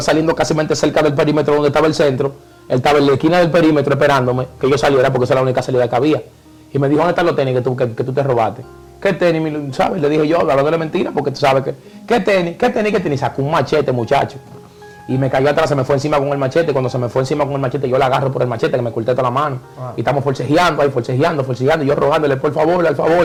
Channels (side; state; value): both; identical; correlation 1.00